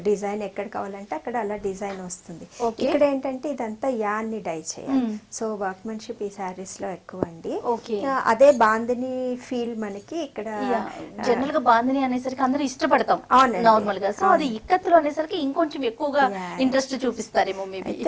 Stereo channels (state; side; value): identical; both; correlation 1.00